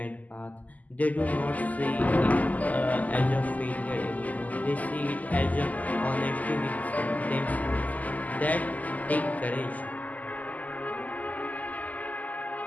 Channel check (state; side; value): late; right; 0.078 ms